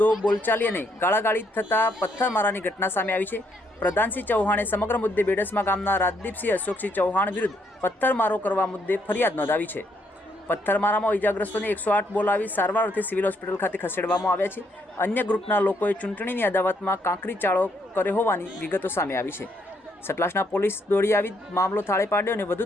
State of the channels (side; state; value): both; normal; correlation 0.73